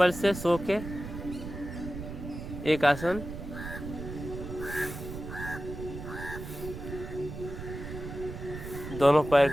से सो के एक आसन। दोनों पैर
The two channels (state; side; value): noise; right; rumble, 9 dB below the sound